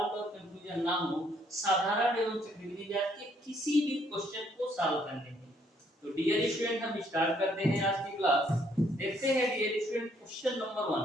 और कंफ्यूजन ना हो साधारण एवं चक्रवृद्धि ब्याज के किसी भी क्वेश्चन को सॉल्व करने में। तो डियर स्टूडेंट, हम स्टार्ट करते हैं आज की क्लास। देखते हैं डियर स्टूडेंट क्वेश्चन नंबर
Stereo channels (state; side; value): normal; both; correlation 0.68